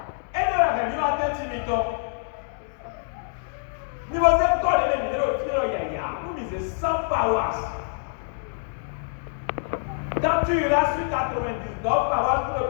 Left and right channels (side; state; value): right; silent; digital silence